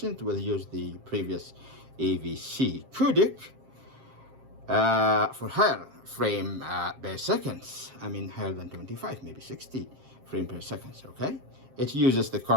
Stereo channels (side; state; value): left; late; 7.5 ms